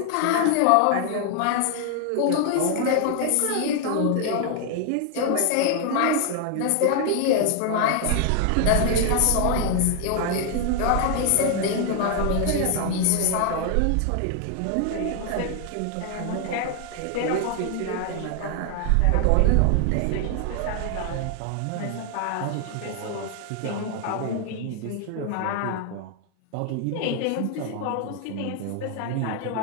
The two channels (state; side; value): different; both; correlation 0.00